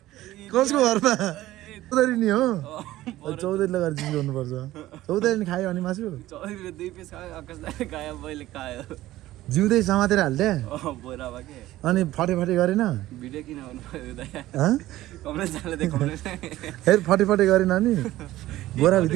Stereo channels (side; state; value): left; quieter; 15.7 dB